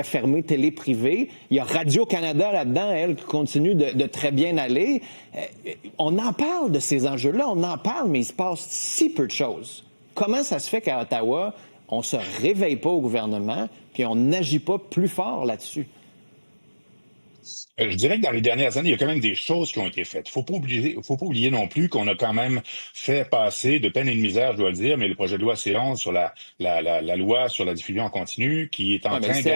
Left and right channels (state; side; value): inverted; both; correlation -1.00